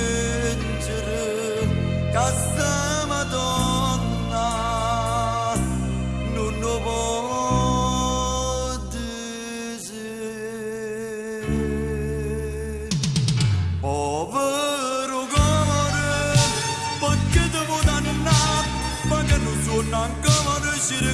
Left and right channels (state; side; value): identical; both; correlation 1.00